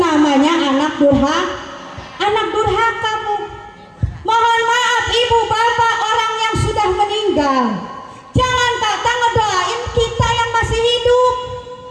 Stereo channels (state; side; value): identical; both; correlation 1.00